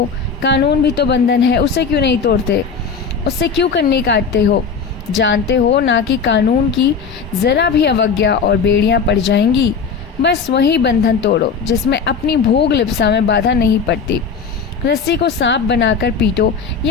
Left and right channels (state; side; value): quieter; right; 5.7 dB